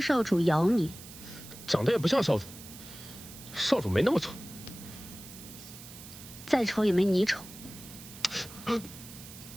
主咬你。长得也不像少主，少主没那么丑。再丑也没你丑。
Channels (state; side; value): noise; right; hiss, 15 dB below the sound